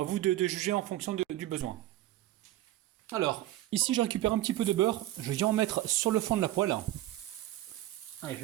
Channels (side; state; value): left; quieter; 14.9 dB